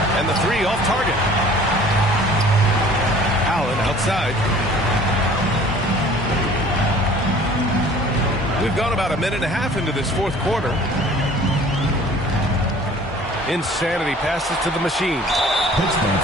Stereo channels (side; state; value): both; normal; correlation 0.49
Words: And the 3 off target. Allen outside. We've gone about a minute and a half into this fourth quarter. Insanity passes to the machine. Pittsburgh